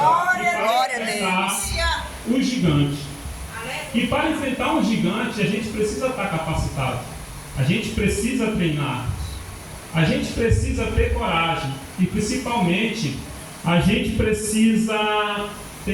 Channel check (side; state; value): both; identical; correlation 1.00